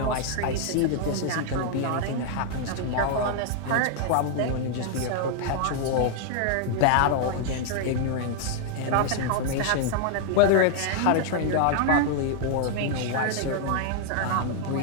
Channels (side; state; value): both; different; correlation 0.00